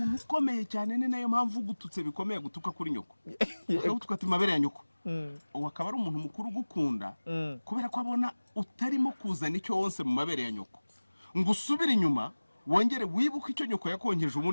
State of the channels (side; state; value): both; inverted; correlation -1.00